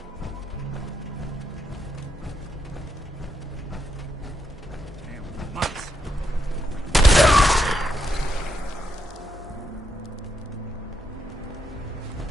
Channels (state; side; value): normal; both; correlation 0.80